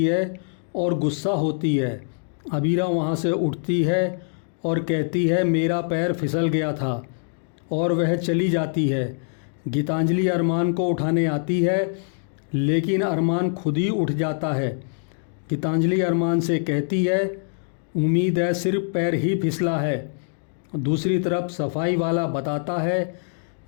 है और गुस्सा होती है। अबीरा वहाँ से उठती है और कहती है मेरा पैर फिसल गया था, और वह चली जाती है। गीतांजलि अरमान को उठाने आती है, लेकिन अरमान खुद ही उठ जाता है। गीतांजलि अरमान से कहती है उम्मीद है सिर्फ पैर ही फिसला है। दूसरी तरफ सफाई वाला बताता है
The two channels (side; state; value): right; silent; 63 dB below the other